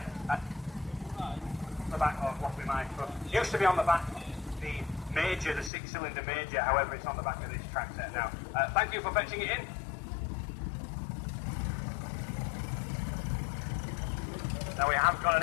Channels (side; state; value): right; drops out; at 5.7 s